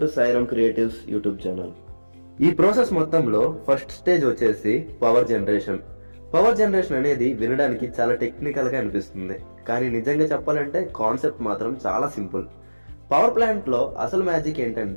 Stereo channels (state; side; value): inverted; both; correlation -1.00